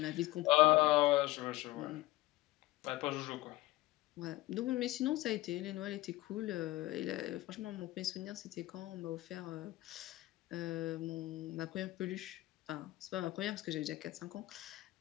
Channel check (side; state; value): right; quieter; 18.1 dB